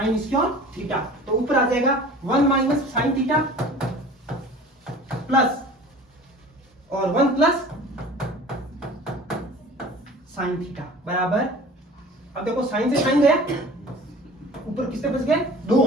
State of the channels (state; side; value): normal; both; correlation 0.43